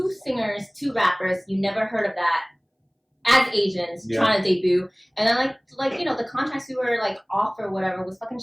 singers, 2 rappers. You never heard of that as Asians trying to debut. And then, the contracts we were, off or whatever was fucking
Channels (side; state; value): both; identical; correlation 1.00